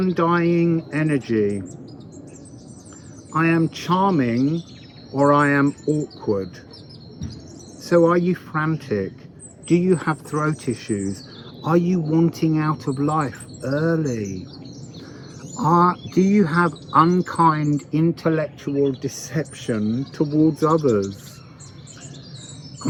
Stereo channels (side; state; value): both; identical; correlation 1.00